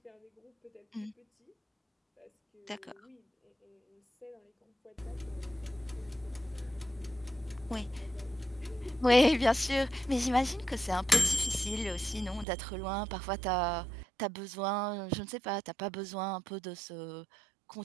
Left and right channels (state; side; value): drops out; left; at 12.5 s